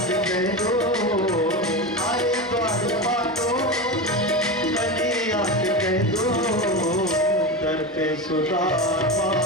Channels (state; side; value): normal; both; correlation 0.20